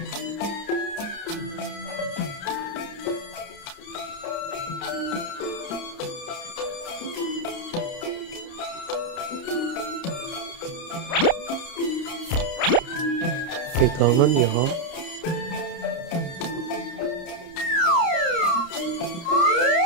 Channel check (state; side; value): late; right; 30 ms